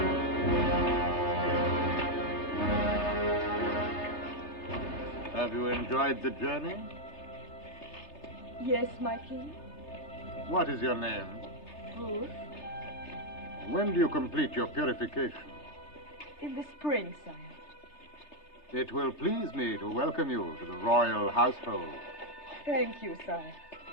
Have you enjoyed the journey? Yes, my king. What is your name? Ruth. When do you complete your purification? In the spring, sire. It will please me to welcome you to the royal household. Thank you, sire.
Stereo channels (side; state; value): right; late; 3.3 ms